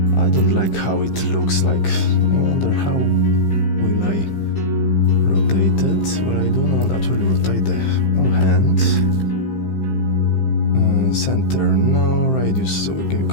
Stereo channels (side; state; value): right; late; 15 ms